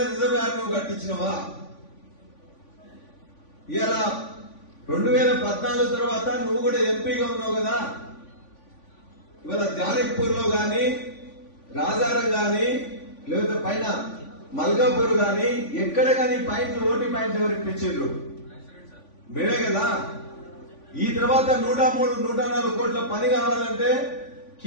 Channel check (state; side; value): late; right; 3.5 ms